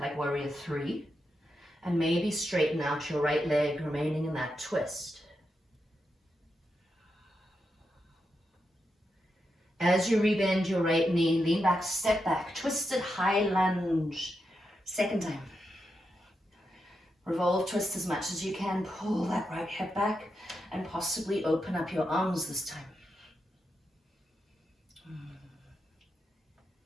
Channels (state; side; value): normal; both; correlation 0.86